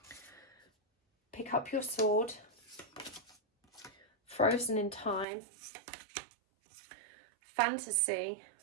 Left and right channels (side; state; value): left; drops out; at 5.2 s